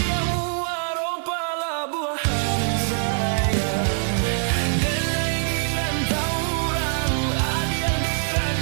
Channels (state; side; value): silent; left; 61 dB below the other